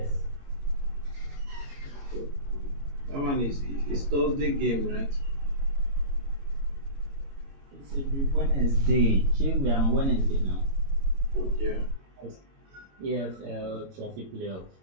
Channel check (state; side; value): late; left; 22 ms